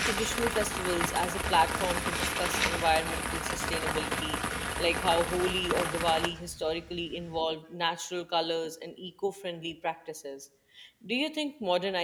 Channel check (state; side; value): identical; both; correlation 1.00